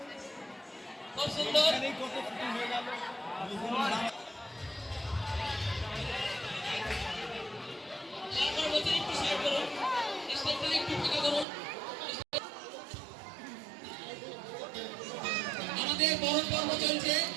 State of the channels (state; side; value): drops out; left; at 11.5 s